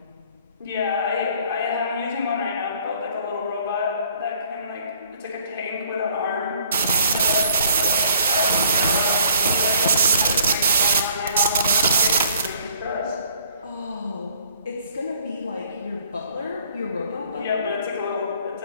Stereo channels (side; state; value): both; inverted; correlation -0.59